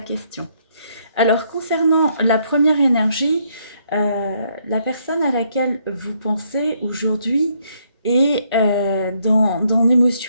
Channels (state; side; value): inverted; both; correlation -0.71